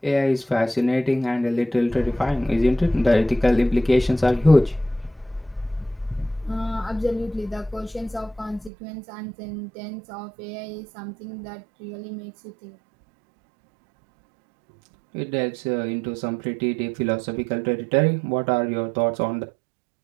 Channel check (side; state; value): left; drops out; at 8.7 s